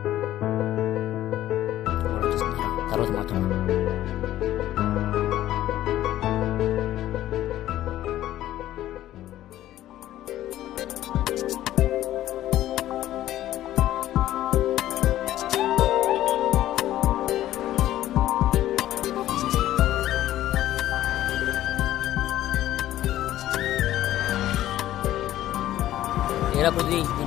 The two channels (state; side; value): quieter; right; 13.6 dB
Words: తర్వాత మాత్రం ఏరా పృథ్వీ,